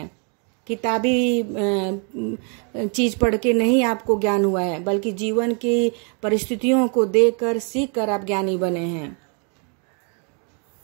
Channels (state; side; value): quieter; left; 38.4 dB